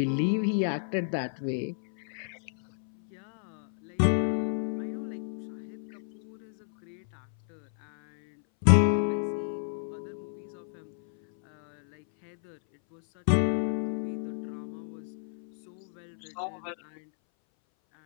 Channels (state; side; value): silent; right; 57 dB below the other